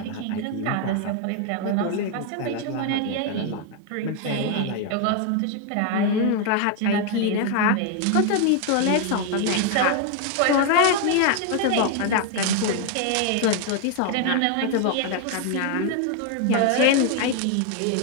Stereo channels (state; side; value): different; both; correlation 0.01